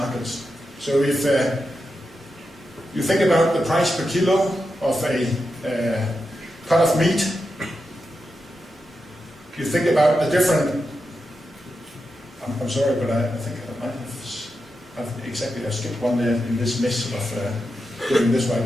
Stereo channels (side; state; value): both; normal; correlation 0.88